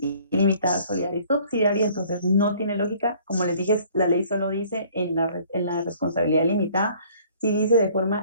solidaria y subsidiaria, entonces no tiene lógica. Como les dije, la ley solo dice en la responsabilidad limitada, sí dice de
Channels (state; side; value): inverted; both; correlation -0.55